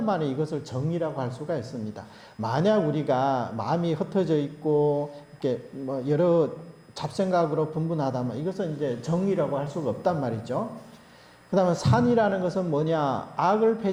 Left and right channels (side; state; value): both; identical; correlation 1.00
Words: 이것을 정이라고 할 수가 있습니다. 만약 우리가 마음이 흩어져 있고 이렇게 뭐 여러 잡생각으로 분분하다면 이것은 이제 정이라고 할 수가 없단 말이죠. 그 다음에 산이라는 것은 뭐냐? 악을